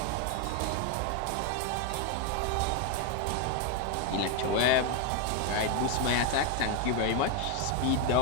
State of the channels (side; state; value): both; different; correlation 0.01